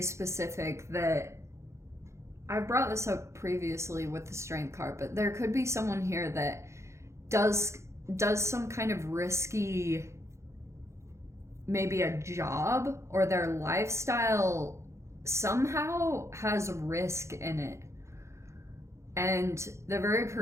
specific that I brought this up previously with the Strength card, but there could be someone here that does some kind of risky, maybe a job, or their lifestyle somehow has risk in it. And they're very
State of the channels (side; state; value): left; late; 0.14 ms